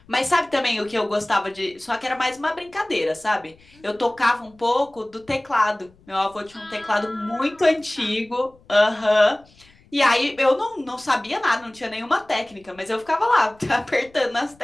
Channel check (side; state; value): left; noise; rumble, 29 dB below the sound